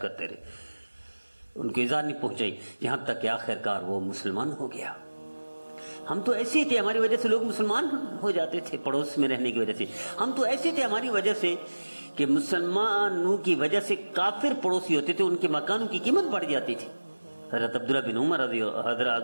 کرتے رہے. ان کو ایذا نہیں پہنچائی، یہاں تک کہ آخرکار وہ مسلمان ہو گیا. ہم تو ایسے ہی تھے، ہماری وجہ سے لوگ مسلمان ہو جاتے تھے، پڑوس میں رہنے کی وجہ سے. ہم تو ایسے تھے ہماری وجہ سے کہ مسلمانوں کی وجہ سے کافر پڑوسی ہوتے تھے، ان کے مکانوں کی قیمت بڑھ جاتی تھی. حضرت عبداللہ بن عمر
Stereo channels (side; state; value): both; inverted; correlation -1.00